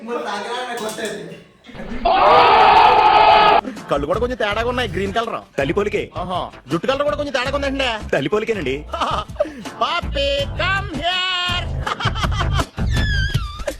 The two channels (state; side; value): identical; both; correlation 1.00